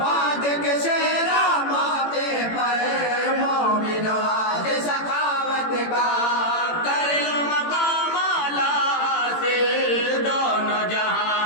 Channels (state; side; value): late; right; 18 ms